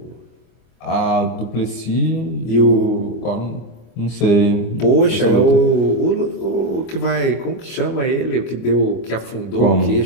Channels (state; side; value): late; right; 25 ms